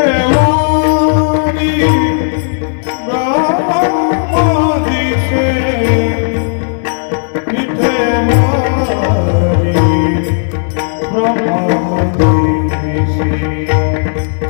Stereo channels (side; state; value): right; silent; digital silence